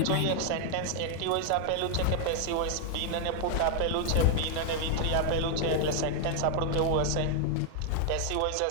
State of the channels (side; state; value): both; different; correlation 0.00